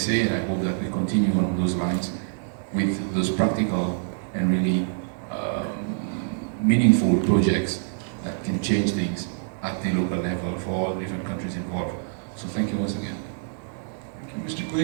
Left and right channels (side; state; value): left; silent; 61 dB below the other